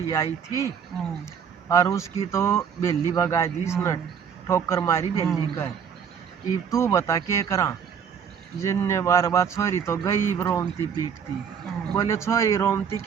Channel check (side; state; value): left; quieter; 7.4 dB